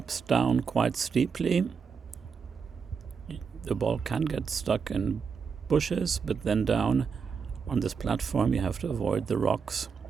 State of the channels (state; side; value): quieter; left; 5.9 dB